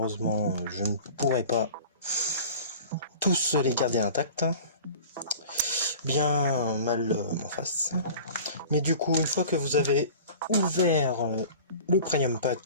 je ne pourrais pas tous les garder intacts. Bien mal m'en face. Mais du coup, une fois que vous avez ouvert le Premium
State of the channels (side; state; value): both; inverted; correlation -0.40